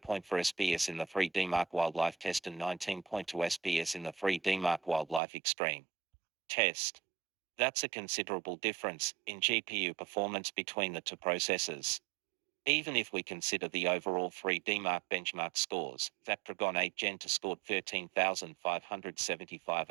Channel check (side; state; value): left; drops out; at 5.2 s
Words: SPS in the 3D Mark Wildlife test and 19.2 SPS in the 3D Mark Wildlife Extreme test. That's a considerable difference in GPU performance between the two processors. Even if we consider the overall 3D Mark benchmark scores, Snapdragon 8 Gen 2 scored 13,575